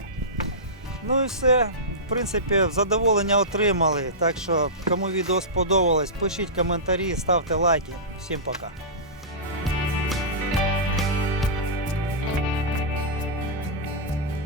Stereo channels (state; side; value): normal; both; correlation -0.17